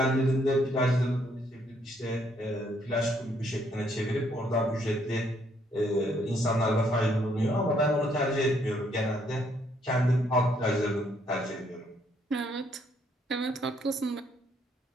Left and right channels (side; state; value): both; normal; correlation 0.69